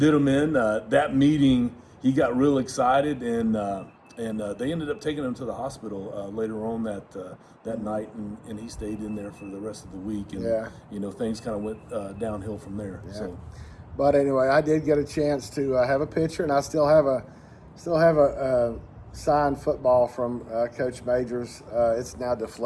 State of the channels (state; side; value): identical; both; correlation 1.00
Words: did him in. That meeting, he got real excited, and they ended up taking him to the hospital later on that night, and he stayed in there for the rest of the week. And things kind of went downhill from there. Yeah. So, but anyway, I did get a chance to have a picture, and I still have a signed football from Coach Majors. It's now